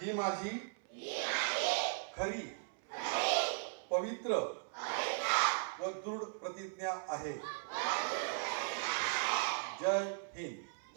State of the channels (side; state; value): left; silent; 52 dB below the other